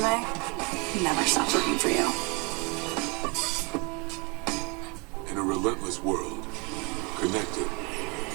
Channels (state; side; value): quieter; left; 29.9 dB